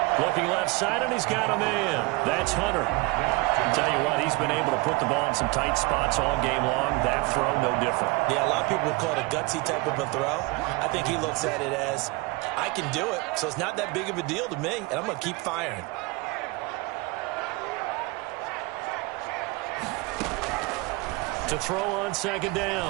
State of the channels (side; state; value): left; quieter; 24.3 dB